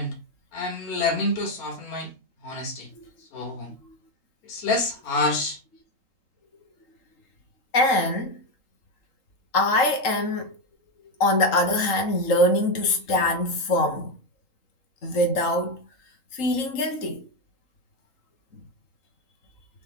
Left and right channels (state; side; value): late; right; 3.8 ms